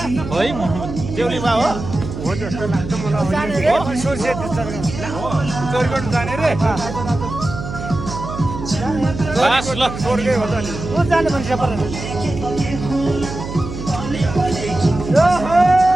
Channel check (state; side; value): noise; right; hum, 9 dB below the sound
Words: होइन है देउली बाबु हो जस्तो लाग्छ मलाई जाने रे सोर्से चोरी गर्नु जाने रे बस ल स्वर्गै हो त नि को जाने भन्छ पर